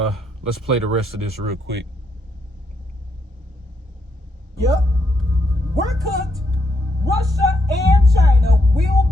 play the rest of this real quick. Yep. We're cooked. Russia and China will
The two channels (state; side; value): normal; both; correlation 0.78